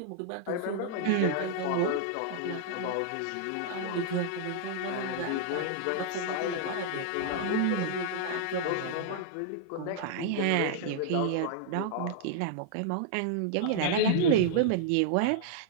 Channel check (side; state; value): both; different; correlation -0.01